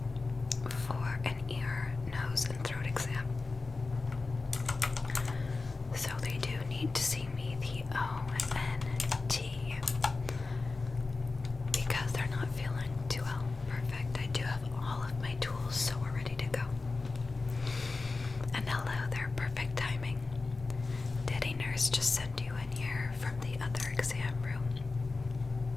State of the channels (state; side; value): quieter; right; 3.8 dB